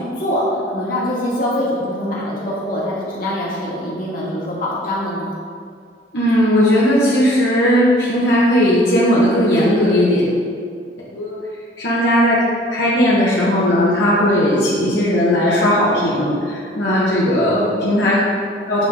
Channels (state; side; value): normal; both; correlation 0.50